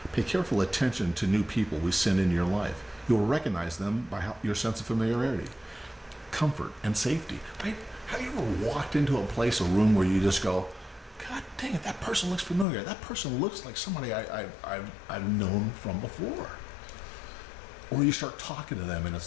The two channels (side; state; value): right; drops out; at 12.7 s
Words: Pay careful attention to new people we send in your life. You'll recognize them by your sense of familiarity, comfort, and safety. Right? Have you ever walked into a place, a room where you just go, God dang it, that person looks familiar. That person looks like somebody I've known from before. Or you start talking to them and